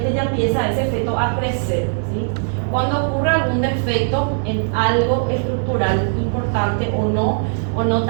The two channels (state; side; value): silent; left; 62 dB below the other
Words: ya empieza ese feto a crecer, ¿sí? Cuando ocurre algún defecto en algo estructural importante o no